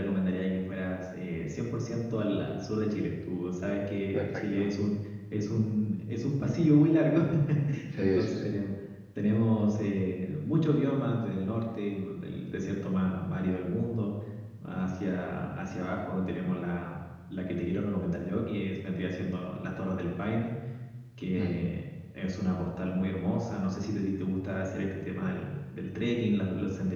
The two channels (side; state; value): both; identical; correlation 1.00